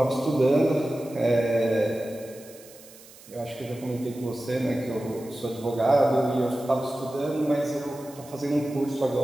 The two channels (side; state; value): right; noise; hiss, 21 dB below the sound